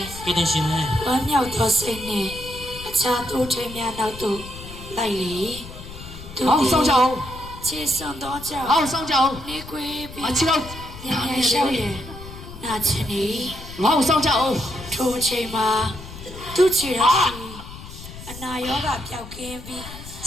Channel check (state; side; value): noise; left; rumble, 14 dB below the sound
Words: ကဲတင်ရှင်လေ ဝမ်းမြောက်သောစိတ်နှင့်အခြားထိုထိန်များနောက်သို့လိုက်လေသူ 好上脚 ခြေစွန်သောကြောင့် 好上脚 နေကွေးပြီး 啊起来 ညံ့ညံ့ရှောက်ရင်နာချင်နေ 好上脚 ထိုအချိန်မှာသူ့ခြေတော်စီအနာရောဂါပျောက်ကင်းပြီး